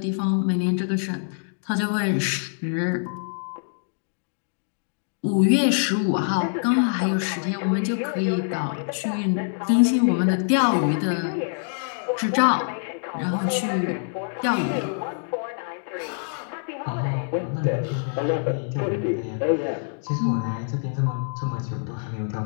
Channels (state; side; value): silent; right; digital silence